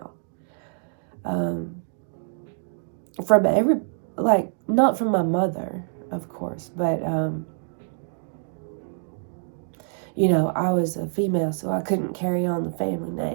From every, like, not from my mother, of course, but, I was a female, so I couldn't carry on the family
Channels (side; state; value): left; silent; digital silence